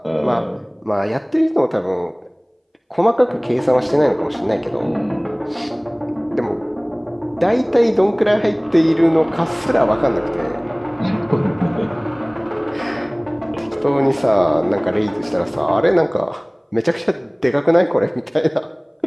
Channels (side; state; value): both; identical; correlation 1.00